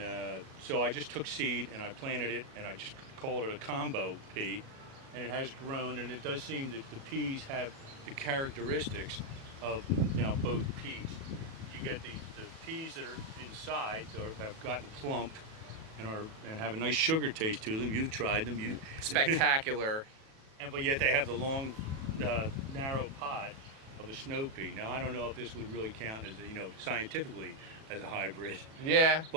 so I just took seed and I planted it, and I just called it a combo pea, and it has grown, and it does seem that the peas have the characteristics of now both peas. You get the peas that are inside or have gotten plump and have a nice sugar taste to them. You've tried them. Spectacular. But yet they have the long, narrow pod of a snow pea. Now I don't know if this would really count as scientifically as a hybrid. Yeah,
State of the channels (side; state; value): left; late; 37 ms